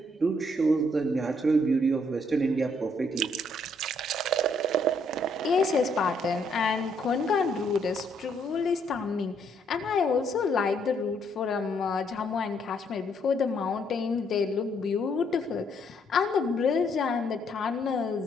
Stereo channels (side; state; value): both; normal; correlation 0.70